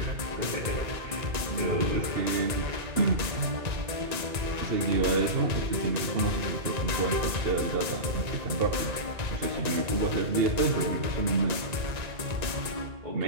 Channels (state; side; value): late; left; 1.9 ms